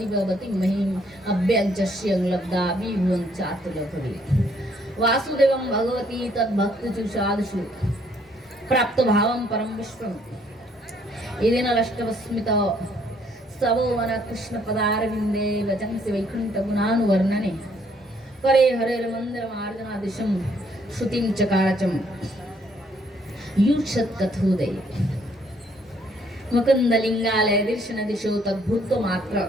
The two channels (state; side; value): normal; both; correlation 0.66